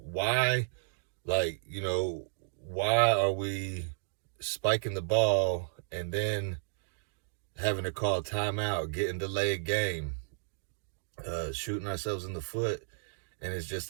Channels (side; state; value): left; silent; digital silence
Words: like, you know, why are we spiking the ball and then having to call timeout, getting delayed game, shooting ourselves in the foot? And it's just